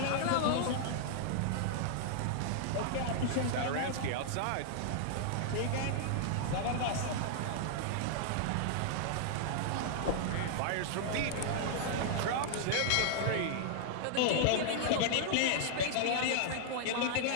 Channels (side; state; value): both; different; correlation -0.01